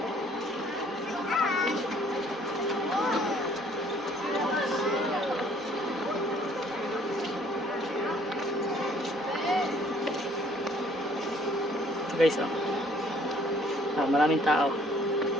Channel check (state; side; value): normal; both; correlation 0.59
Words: Ito guys, oh. Maraming tao.